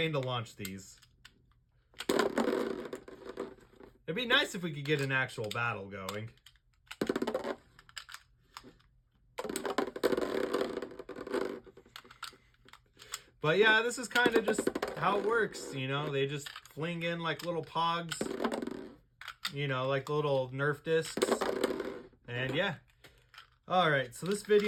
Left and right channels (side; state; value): both; identical; correlation 1.00